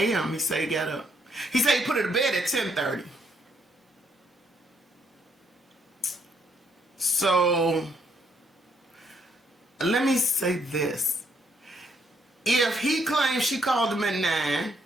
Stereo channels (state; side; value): normal; both; correlation 0.72